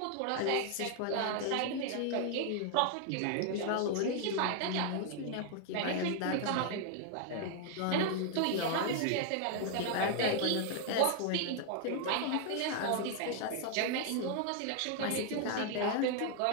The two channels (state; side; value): different; both; correlation 0.00